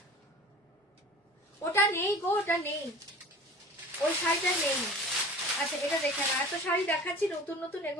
ওটা নেই গো ওটা নেই ওই শাড়িটা নেই আচ্ছা এটা দেখে না এত শাড়ি দেখাচ্ছি নতুন নতুন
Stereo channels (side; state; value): both; normal; correlation 0.40